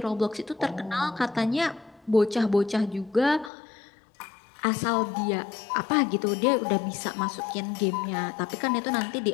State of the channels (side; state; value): right; drops out; at 3.5 s